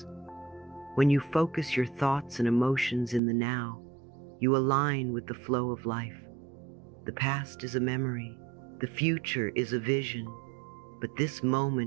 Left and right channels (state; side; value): drops out; left; at 3.2 s